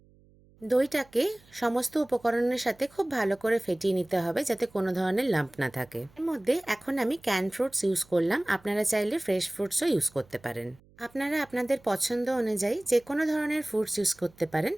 দইটাকে সমস্ত উপকরণের সাথে খুব ভালো করে ফেটিয়ে নিতে হবে যাতে কোনো ধরনের লাম্প না থাকে। এর মধ্যে এখন আমি ক্যান ফ্রুটস ইউজ করলাম, আপনারা চাইলে ফ্রেশ ফ্রুটসও ইউজ করতে পারেন। আপনারা আপনাদের পছন্দ অনুযায়ী যে কোনো ধরনের ফ্রুটস ইউজ করতে পারেন।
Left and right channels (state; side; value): noise; right; hum, 29 dB below the sound